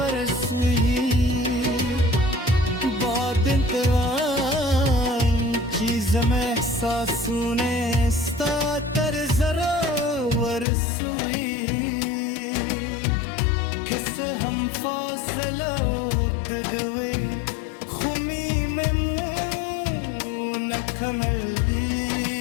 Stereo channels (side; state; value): right; drops out; at 10.7 s